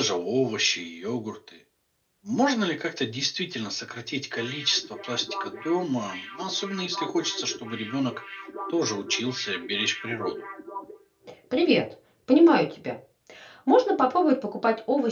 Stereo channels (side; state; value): both; identical; correlation 1.00